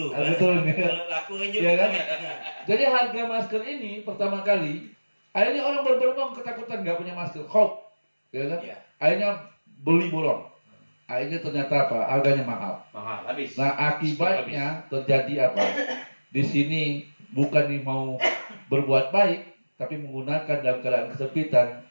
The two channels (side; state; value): both; inverted; correlation -1.00